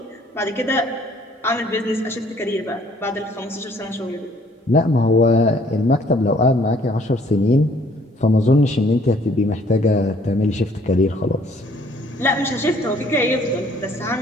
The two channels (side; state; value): both; normal; correlation 0.61